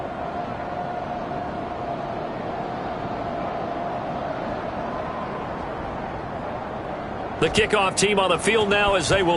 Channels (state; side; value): identical; both; correlation 1.00